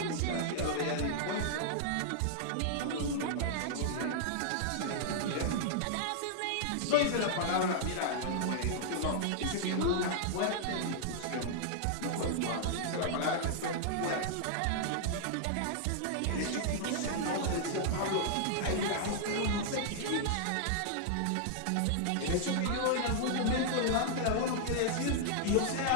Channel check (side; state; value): both; different; correlation -0.01